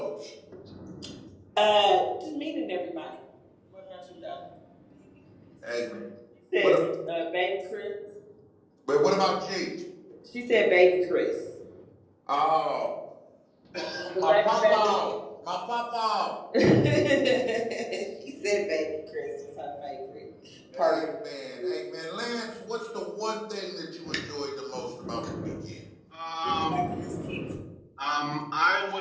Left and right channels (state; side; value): identical; both; correlation 1.00